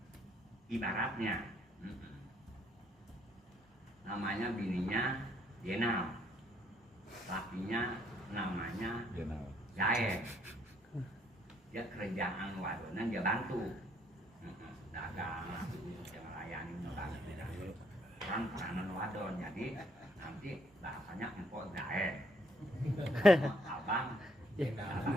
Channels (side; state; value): both; normal; correlation 0.68